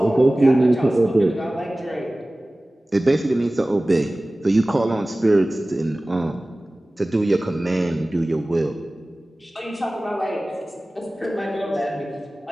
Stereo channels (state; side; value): normal; both; correlation 0.98